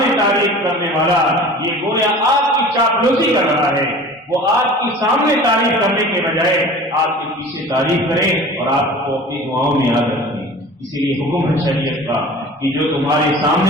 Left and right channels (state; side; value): normal; both; correlation 0.41